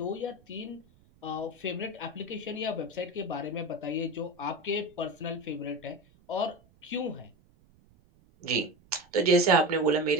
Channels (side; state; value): right; noise; rumble, 30 dB below the sound